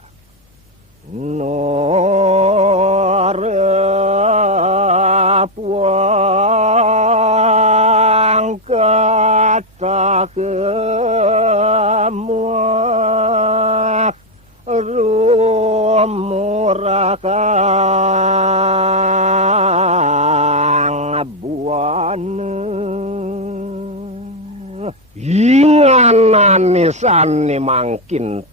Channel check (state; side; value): normal; both; correlation 0.04